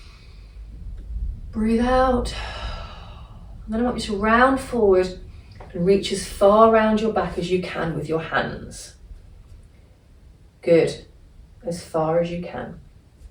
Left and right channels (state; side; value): identical; both; correlation 1.00